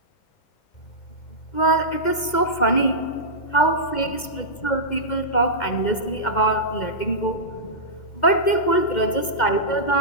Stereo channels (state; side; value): late; right; 2.1 ms